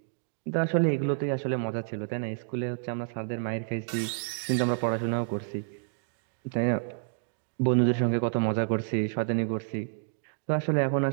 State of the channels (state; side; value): silent; left; digital silence